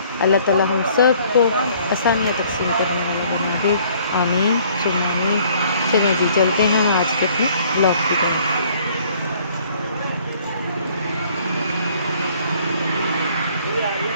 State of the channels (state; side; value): inverted; both; correlation -0.59